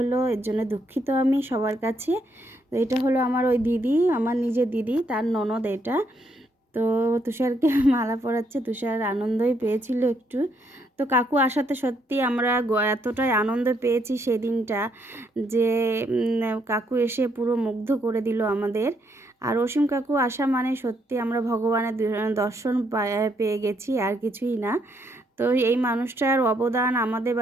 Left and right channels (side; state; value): both; normal; correlation 0.74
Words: এর জন্য দুঃখিত আমি সবার কাছে। তো এটা হলো আমার ওই দিদি, আমার নিজের দিদি, তার ননদ এটা। তো তুষারকে মালা পরাচ্ছে, তুষার আনন্দই পেয়েছিল একটু। তো কাকু আসাতে সত্যি আমরা এতটাই আনন্দ পেয়েছি সেদিনটা, যে কাকু এসে পুরো মুগ্ধ করে দিল আমাদের। আর অসীম কাকু আসা মানে সত্যি আমরা ভগবানের দর্শন পেয়ে গেছি, আর কিছুই না। তো এই মানুষটার অবদান আমাদের